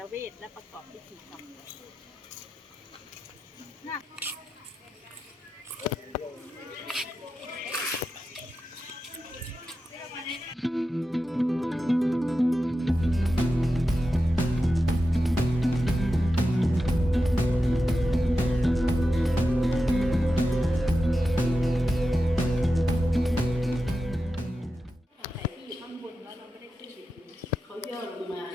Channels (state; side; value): normal; both; correlation 0.91